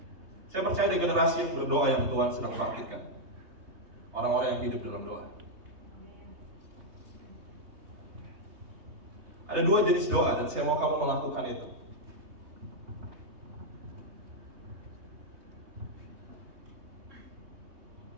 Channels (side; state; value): left; late; 3.2 ms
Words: Saya percaya di generasi yang berdoa yang Tuhan sedang bangkitkan. Orang-orang yang hidup dalam doa. Ada 2 jenis doa dan saya mau kamu melakukan itu.